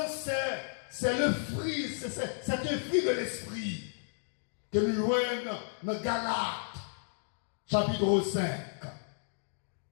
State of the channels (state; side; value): silent; right; digital silence